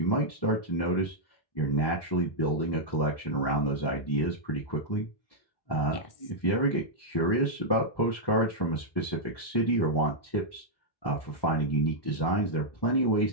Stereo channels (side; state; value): right; late; 1.1 ms